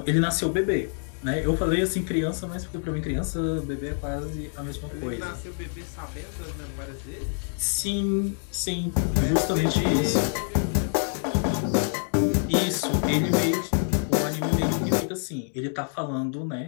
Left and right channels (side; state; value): right; silent; 61 dB below the other